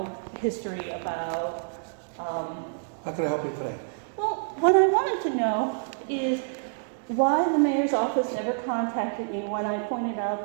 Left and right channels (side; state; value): left; silent; digital silence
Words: history about. How can I help you today? Well, what I wanted to know is why the mayor's office never contacted me when I pointed out